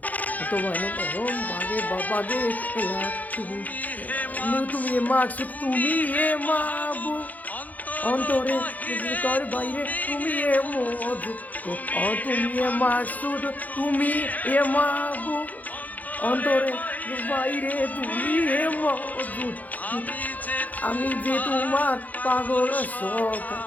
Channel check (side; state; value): right; late; 0.080 ms